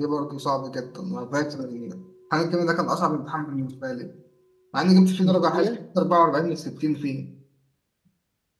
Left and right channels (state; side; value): identical; both; correlation 1.00